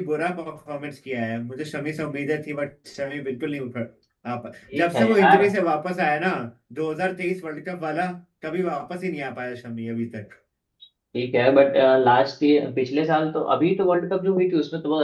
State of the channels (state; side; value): identical; both; correlation 1.00